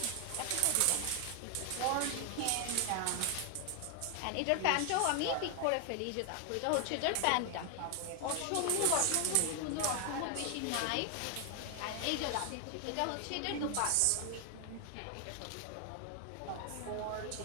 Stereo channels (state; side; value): different; both; correlation 0.00